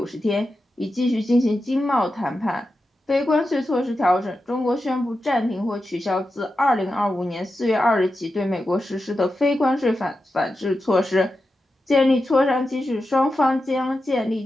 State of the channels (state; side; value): normal; both; correlation 0.90